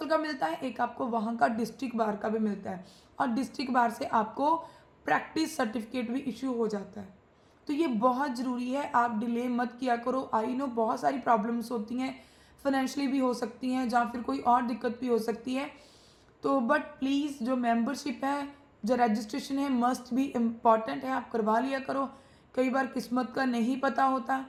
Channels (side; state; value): both; identical; correlation 1.00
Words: का मिलता है, एक आपको वहाँ का डिस्ट्रिक्ट बार का भी मिलता है, और डिस्ट्रिक्ट बार से आपको प्रैक्टिस सर्टिफिकेट भी इशू हो जाता है। तो ये बहुत ज़रूरी है, आप डिले मत किया करो। आई नो बहुत सारी प्रॉब्लम्स होती हैं, फाइनेंशियली भी हो सकती हैं या फिर कोई और दिक्कत भी हो सकती है, तो बट प्लीज़ जो मेंबरशिप है, जो रजिस्ट्रेशन है, मस्ट भी इम्पॉर्टेंट है, आप करवा लिया करो। कई बार किस्मत का नहीं पता होता